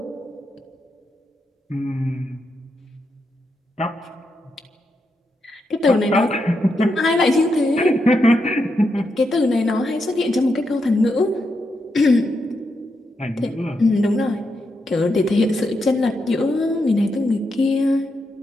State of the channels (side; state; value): both; normal; correlation 0.83